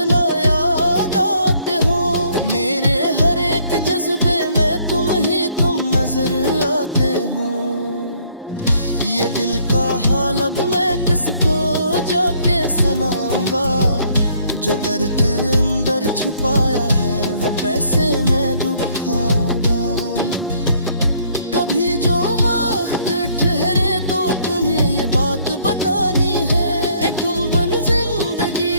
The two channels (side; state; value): both; inverted; correlation -0.63